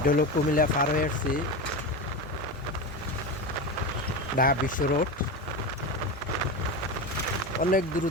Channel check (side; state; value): both; normal; correlation 0.21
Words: হলো কুমিল্লা পার হয়ে আসছি, ঢাকা বিশ্ব রোড। অনেক